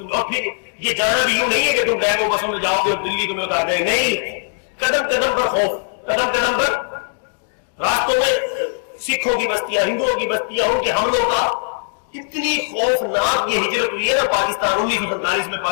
اور پھر یہ جانا بھی یوں نہیں ہے کہ تم ڈیمو بسوں میں جاؤ گے اور دلی تمہیں اتار دیں، نہیں، قدم قدم پر خوف، قدم قدم پر راستوں میں سکھوں کی بستیاں، ہندوؤں کی بستیاں، ان کے حملوں کا اتنی خوفناک یہ ہجرت ہوئی ہے نا پاکستان 1947 میں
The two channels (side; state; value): right; silent; digital silence